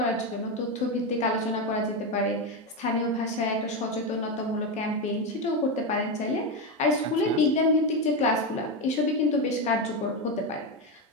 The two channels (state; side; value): normal; both; correlation 0.11